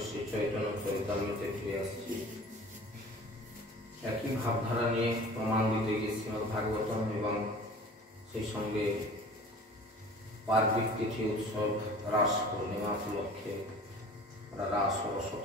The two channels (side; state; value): both; normal; correlation 0.43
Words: একই ভাবধারা নিয়ে প্রমাণ দিতে গিয়ে শ্রীমদ ভাগবতম এবং সেই সঙ্গে পার্বিক তিথি উৎসব রাস পূর্ণিমা উপলক্ষে রাস ও